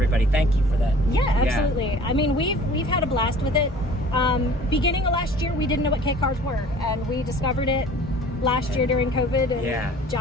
Thank you for that. Yeah, absolutely. I mean, we've had a blast with it. Beginning of last year, we didn't know what K cars were, and we discovered it last year during COVID. And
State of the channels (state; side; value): normal; both; correlation 0.48